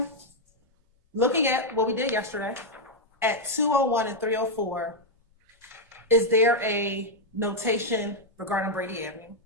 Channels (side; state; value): both; normal; correlation 0.00